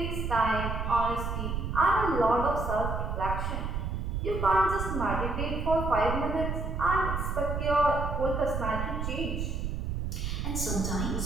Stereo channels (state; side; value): noise; right; rumble, 2 dB below the sound